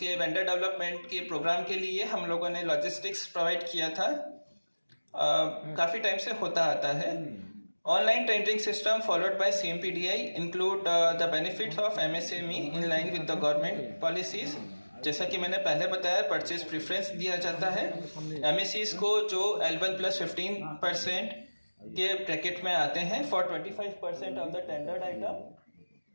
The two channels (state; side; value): inverted; both; correlation -1.00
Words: वेंडर डेवलपमेंट के प्रोग्राम के लिए हम लोगों ने लॉजिस्टिक्स प्रोवाइड किया था। काफ़ी टाइम से होता आता है। Online tendering system followed by CMPDI include the benefits of MSME in line with the government policies. जैसा कि मैंने पहले बताया, परचेज प्रेफरेंस दिया जाता है MSEs को जो L1+15% के ब्रैकेट में आते हैं for 25% of the tendered item.